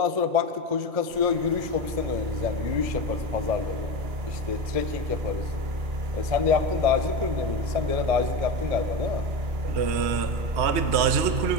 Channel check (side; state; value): left; late; 3.1 ms